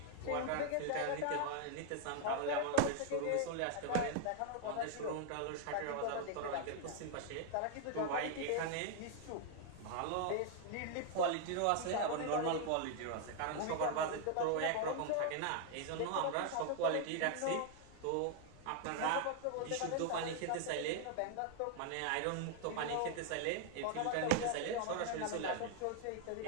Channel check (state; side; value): different; both; correlation 0.00